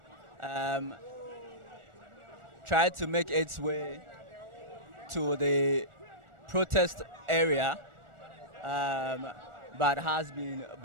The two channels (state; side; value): late; left; 1.4 ms